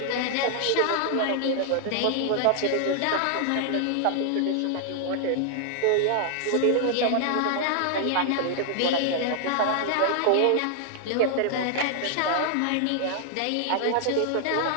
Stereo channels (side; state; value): both; different; correlation 0.00